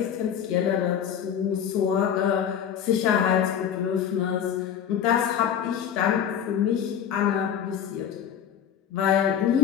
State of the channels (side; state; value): right; quieter; 8.6 dB